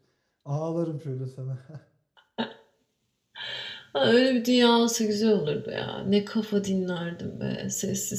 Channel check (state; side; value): identical; both; correlation 1.00